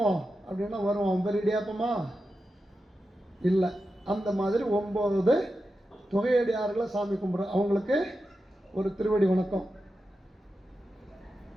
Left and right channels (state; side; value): normal; both; correlation 0.90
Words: அப்படின்னா வருவான். பேர் இடியாப்பமா இல்லை. அந்த மாதிரி 9 தொகையடியார்களை சாமி கும்பிட்ற அவங்களுக்கு ஒரு திருவடி வணக்கம்.